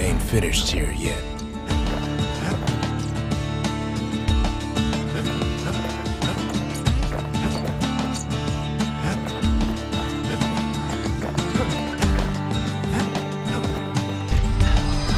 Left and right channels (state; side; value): identical; both; correlation 1.00